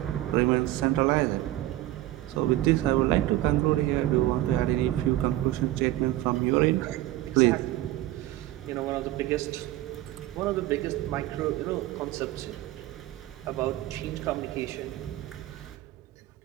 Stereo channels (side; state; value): left; quieter; 15.4 dB